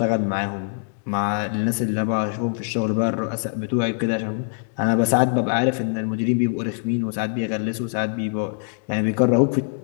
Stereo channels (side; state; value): right; silent; 60 dB below the other